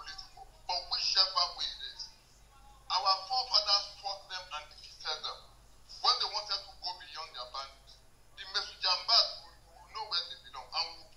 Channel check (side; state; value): both; identical; correlation 1.00